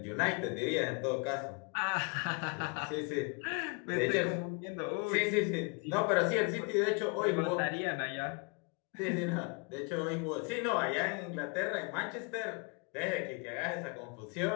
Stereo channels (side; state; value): right; quieter; 33.6 dB